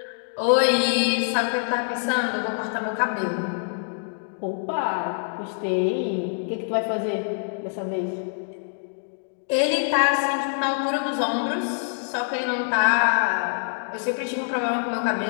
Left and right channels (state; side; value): silent; right; digital silence